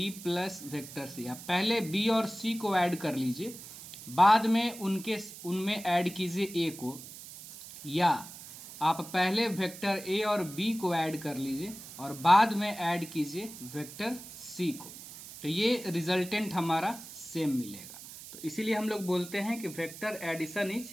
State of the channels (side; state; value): right; noise; hiss, 14 dB below the sound